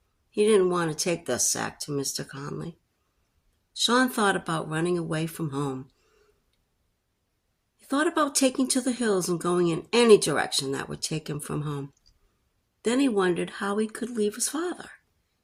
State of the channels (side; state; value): both; identical; correlation 1.00